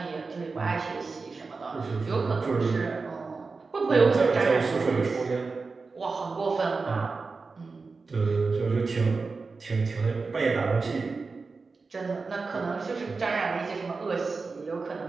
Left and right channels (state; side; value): quieter; left; 4.3 dB